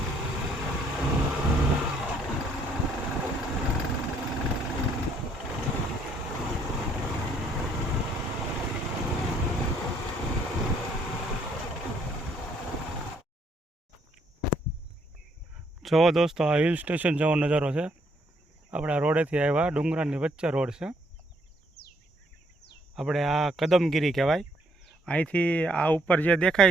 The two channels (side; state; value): both; normal; correlation 0.68